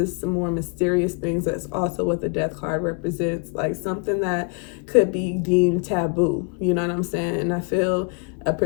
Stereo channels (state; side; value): quieter; right; 35.6 dB